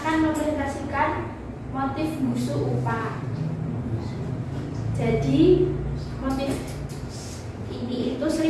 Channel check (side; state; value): both; identical; correlation 1.00